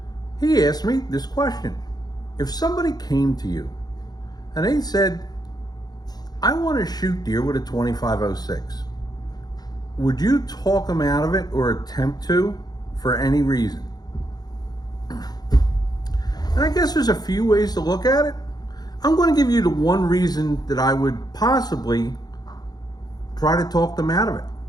He asked me this question. If somebody came to you and they said, I want to shoot deer with a 2506, would you talk them out of it or attempt to for any reason? And I guess there's a few ways to look at it. I'm going to give you the one reason that I would possibly try to talk them out of it.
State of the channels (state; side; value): late; right; 0.19 ms